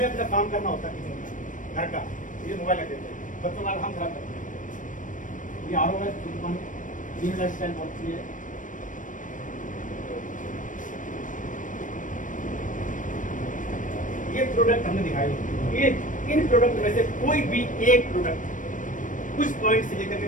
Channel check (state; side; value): late; right; 0.38 ms